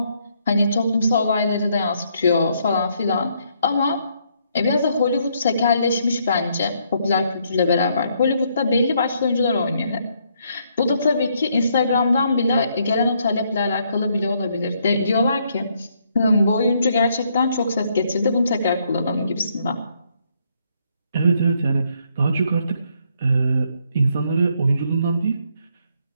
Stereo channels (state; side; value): inverted; both; correlation -0.72